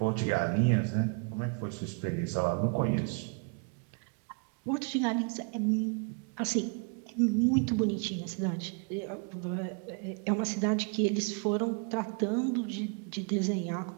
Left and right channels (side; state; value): left; quieter; 35.1 dB